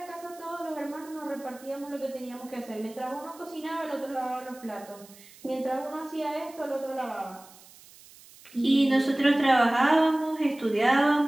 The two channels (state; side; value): noise; right; hiss, 22 dB below the sound